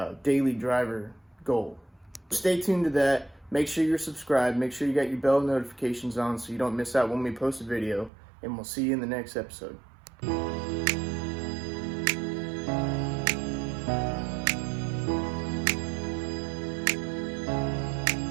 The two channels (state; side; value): drops out; left; at 8.1 s